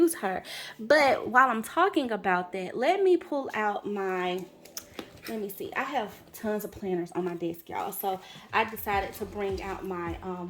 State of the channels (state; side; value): identical; both; correlation 1.00